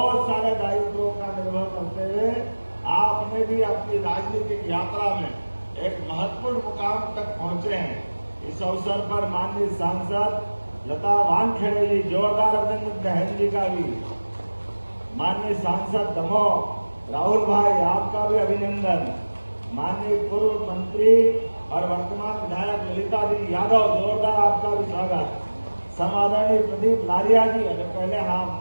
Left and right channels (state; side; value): inverted; both; correlation -1.00